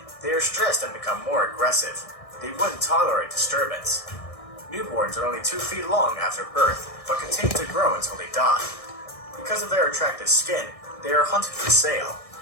they are stressed and become more aggressive. They wouldn't tolerate disturbance. Newborns are only 2 feet long after birth, but continue to grow until they die. Because of their attractive skin, they are hunted for sale.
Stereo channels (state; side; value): late; right; 1.6 ms